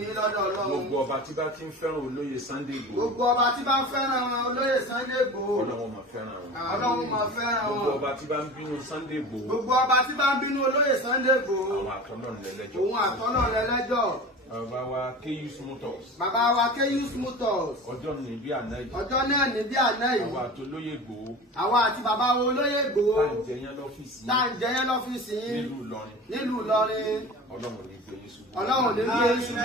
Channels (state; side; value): normal; both; correlation 0.35